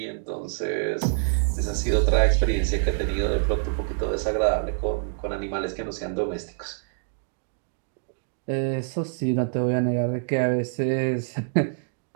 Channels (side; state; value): left; silent; digital silence